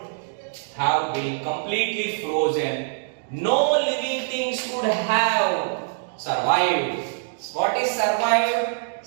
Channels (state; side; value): silent; left; digital silence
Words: have been completely frozen, no living things could have survived. What is survived?